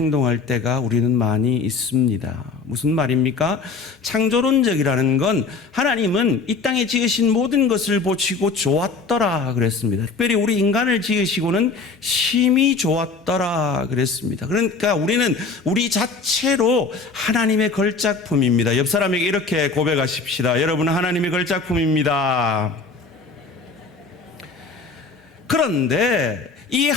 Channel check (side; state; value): right; quieter; 4.3 dB